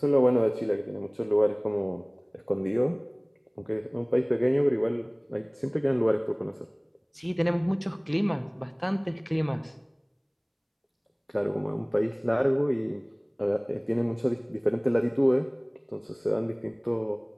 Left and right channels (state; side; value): identical; both; correlation 1.00